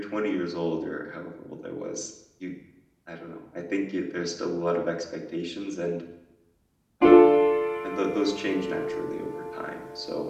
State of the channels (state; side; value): identical; both; correlation 1.00